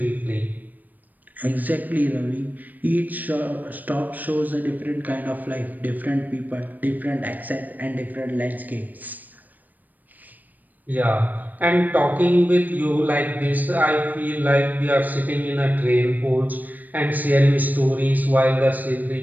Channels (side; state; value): left; late; 0.085 ms